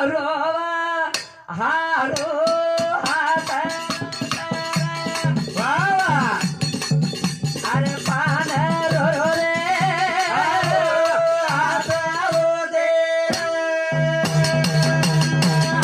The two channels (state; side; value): identical; both; correlation 1.00